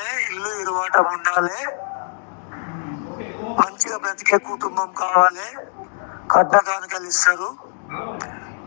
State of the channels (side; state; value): right; silent; digital silence